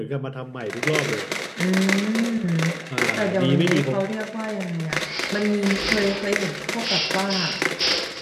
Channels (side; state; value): both; identical; correlation 1.00